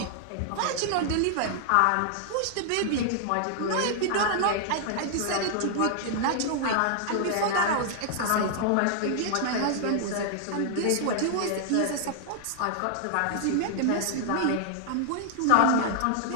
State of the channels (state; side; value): different; both; correlation -0.01